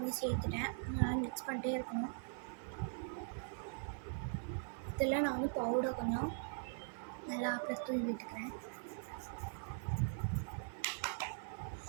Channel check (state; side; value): silent; left; 50 dB below the other